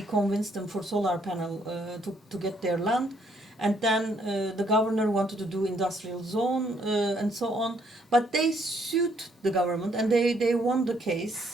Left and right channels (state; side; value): normal; both; correlation 0.69